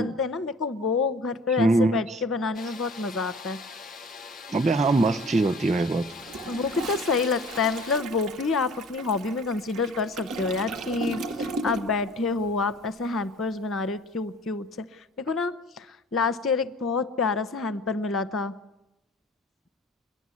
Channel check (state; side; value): normal; both; correlation 0.46